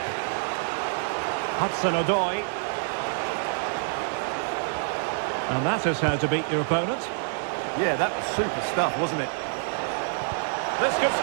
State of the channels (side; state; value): left; silent; digital silence